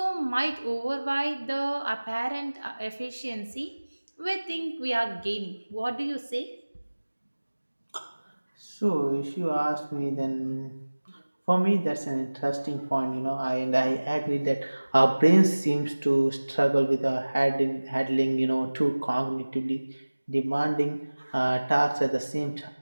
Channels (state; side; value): inverted; both; correlation -1.00